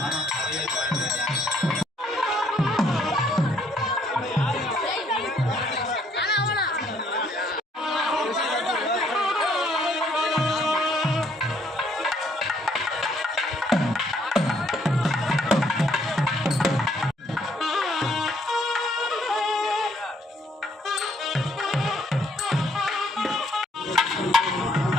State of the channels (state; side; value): normal; both; correlation 0.67